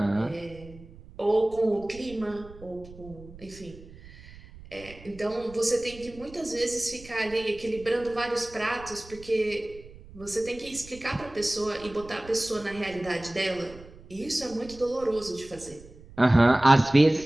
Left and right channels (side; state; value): right; noise; rumble, 19 dB below the sound